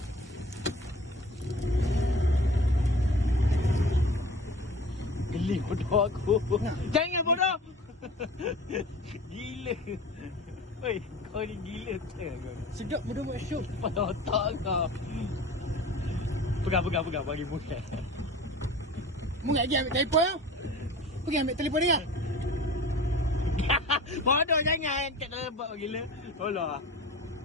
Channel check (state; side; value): normal; both; correlation 0.40